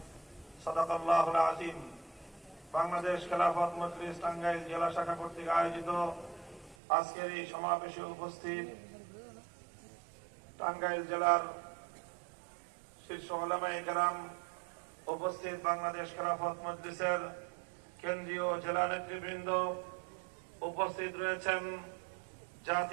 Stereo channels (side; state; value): left; drops out; at 6.8 s